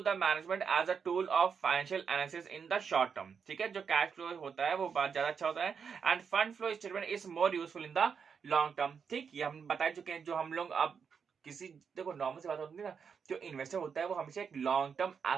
the management as a tool of financial analysis in the short term, ठीक है। जो कैश फ्लो होता है वो बहुत ज्यादा अच्छा होता है। End fund flow statement is more useful in the long term, ठीक। ये हम बता चुके हैं। जो हम लोग अब किसी, देखो नॉर्मल सी बात होती है ना, जो इन्वेस्टर होता है वो हमेशा एक लॉन्ग टर्म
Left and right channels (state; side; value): quieter; left; 6.4 dB